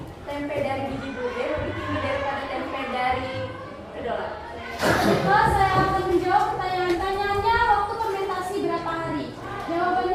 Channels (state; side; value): identical; both; correlation 1.00